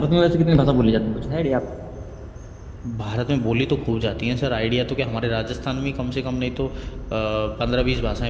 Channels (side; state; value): both; identical; correlation 1.00